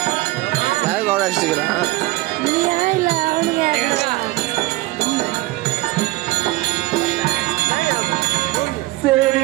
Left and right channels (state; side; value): quieter; left; 19.3 dB